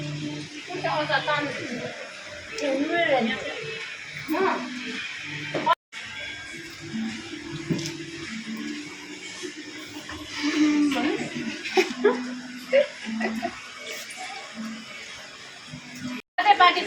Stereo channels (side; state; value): both; identical; correlation 1.00